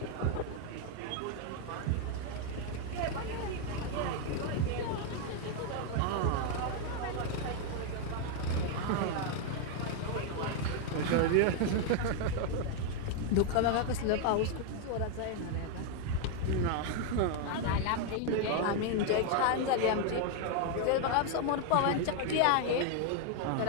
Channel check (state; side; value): different; both; correlation 0.00